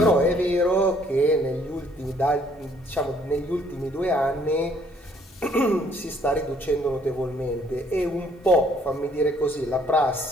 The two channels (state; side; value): normal; both; correlation 0.63